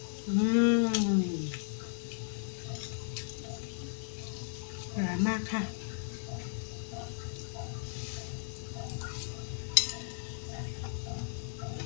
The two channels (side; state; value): right; silent; digital silence